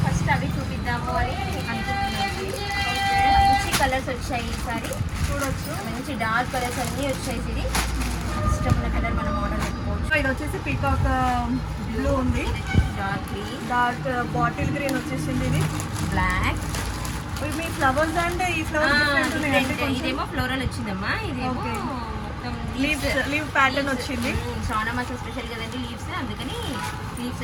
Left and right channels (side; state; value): both; identical; correlation 1.00